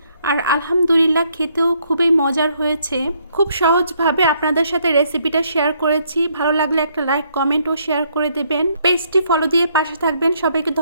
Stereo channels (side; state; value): both; inverted; correlation -0.70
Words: আর আলহামদুলিল্লাহ খেতেও খুবই মজার হয়েছে। খুব সহজভাবে আপনাদের সাথে রেসিপিটা শেয়ার করেছি। ভালো লাগলে একটা লাইক, কমেন্ট ও শেয়ার করে দেবেন। পেজটি ফলো দিয়ে পাশে থাকবেন। সবাইকে